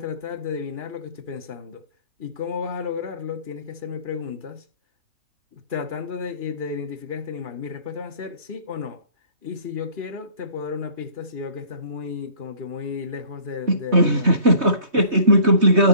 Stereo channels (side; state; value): left; late; 3.2 ms